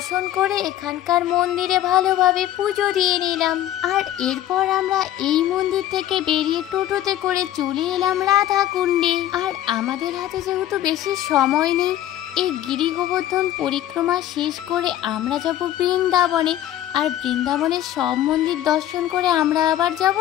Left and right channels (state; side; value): quieter; right; 12.6 dB